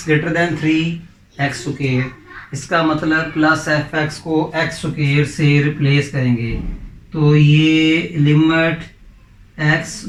greater than 3 x square. इसका मतलब प्लस एफ एक्स को एक्स स्क्वायर से रिप्लेस करेंगे। तो ये लिमिट x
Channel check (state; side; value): identical; both; correlation 1.00